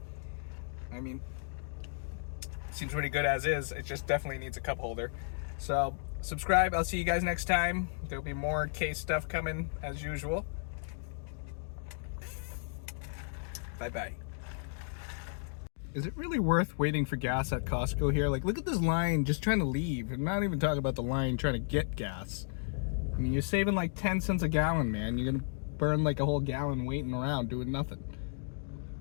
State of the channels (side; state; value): right; silent; digital silence